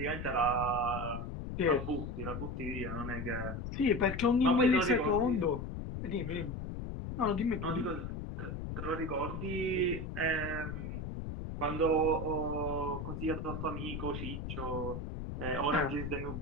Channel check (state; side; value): noise; left; rumble, 5 dB below the sound